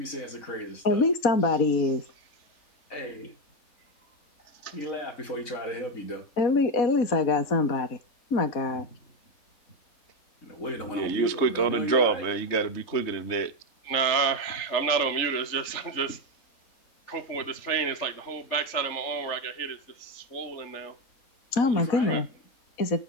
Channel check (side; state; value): right; late; 3.4 ms